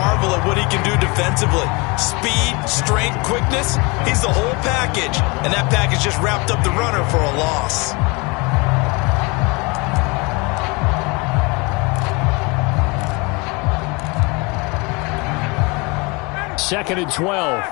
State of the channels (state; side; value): quieter; right; 27.9 dB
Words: at what he can do defensively. Speed, strength, quickness, he's the whole package. And that package just wrapped up the runner for a loss. Second and 12.